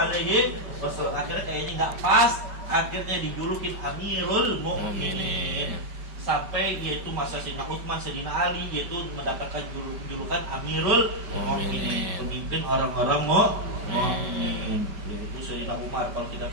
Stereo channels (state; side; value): late; left; 5.3 ms